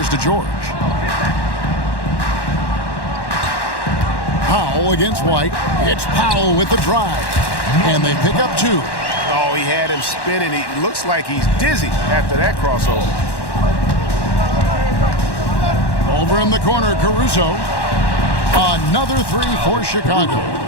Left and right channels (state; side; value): late; right; 1.1 ms